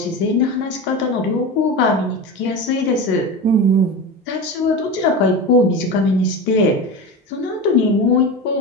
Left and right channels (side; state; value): both; normal; correlation 0.25